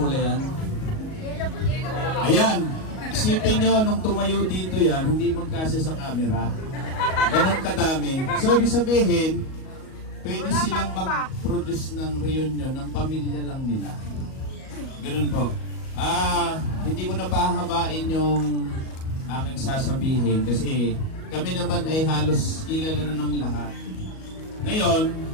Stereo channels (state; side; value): late; right; 38 ms